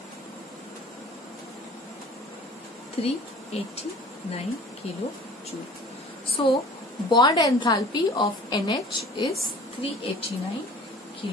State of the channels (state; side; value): normal; both; correlation 0.46